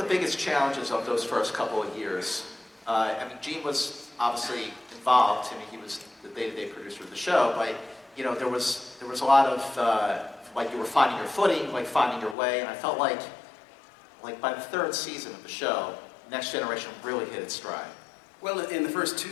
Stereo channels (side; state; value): right; drops out; at 12.4 s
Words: biggest challenges of those first couple of years? I mean, Gene was obviously involved. I mean, he was the day-to-day producer of the show, but you know, there was a lot of like you were finding your footing, like finding your way, and I felt like by the third season of the show, Next Generation really hit its stride. Well, in the first 2